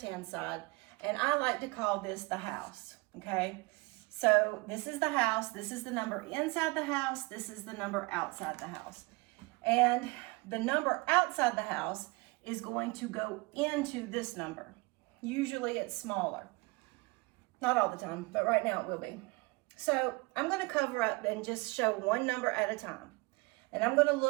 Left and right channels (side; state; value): left; quieter; 25.9 dB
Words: side, and I like to call this the house, okay? So this is the house, this is the number inside the house, this is the number outside the house. And the number outside the house is going to go into this number. Usually it's smaller. Not all the time, but right now it will be. So I'm going to cover up and just show one number at a time. And I'm going to